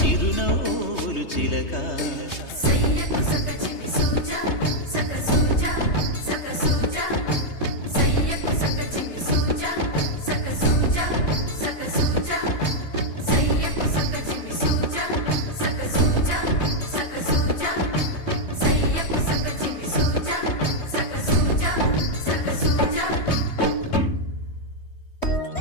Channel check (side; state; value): right; late; 3.2 ms